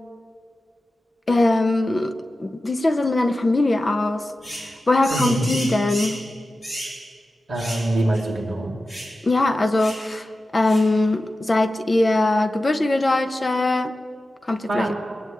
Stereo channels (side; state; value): both; normal; correlation 0.93